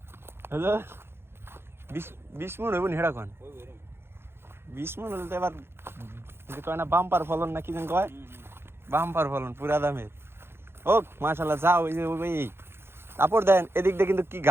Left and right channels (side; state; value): left; late; 0.11 ms